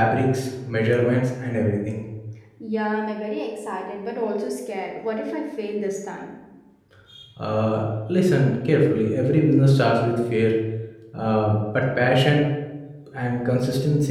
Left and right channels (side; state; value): both; identical; correlation 1.00